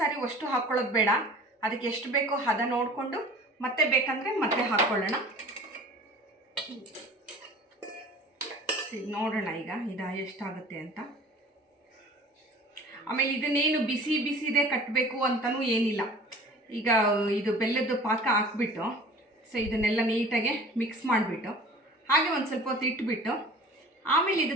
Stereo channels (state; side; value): normal; both; correlation 0.44